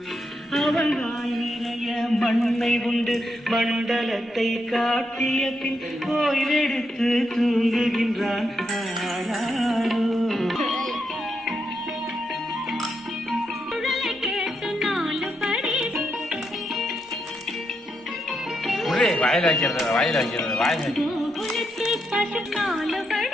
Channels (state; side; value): normal; both; correlation 0.81